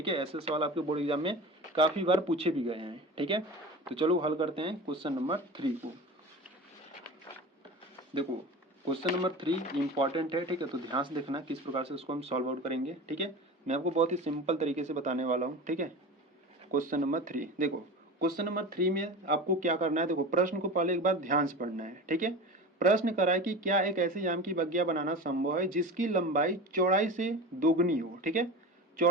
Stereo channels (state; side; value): normal; both; correlation 0.31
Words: है। ऐसे सवाल आपके बोर्ड एग्जाम में काफ़ी बार पूछे भी गए हैं, ठीक है। तो चलो हल करते हैं क्वेश्चन नंबर 3 को। देखो क्वेश्चन नंबर 3 इंपॉर्टेंट है, ठीक है। तो ध्यान से देखना किस प्रकार से उसको हम सॉल्व आउट करेंगे, ठीक है। मैं आपको बहुत ही सिंपल तरीके से बताने वाला हूँ, ठीक है। क्वेश्चन नंबर 3 देखो, क्वेश्चन नंबर 3 में आपको क्या करना है, देखो प्रश्न को पहले एक बार ध्यान से पढ़ना है, ठीक है। प्रश्न करा है कि क्या एक ऐसे आम की बगिया बनाना संभव है जिसकी लंबाई चौड़ाई से दोगुनी हो, ठीक है।